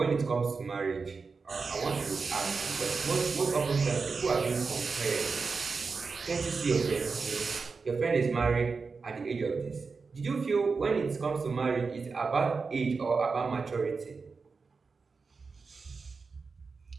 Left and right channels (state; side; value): quieter; left; 4.7 dB